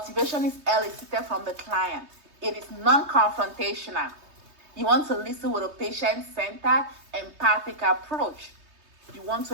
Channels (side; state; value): left; late; 3.2 ms